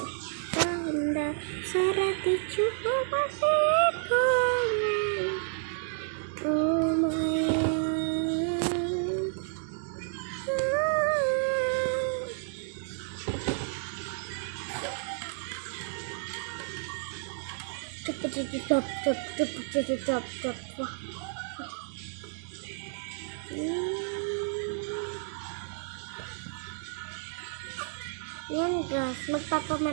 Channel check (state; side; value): silent; left; digital silence